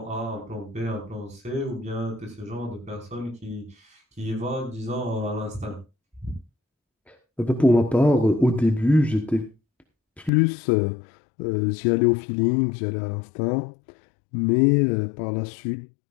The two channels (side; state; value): right; drops out; at 10.3 s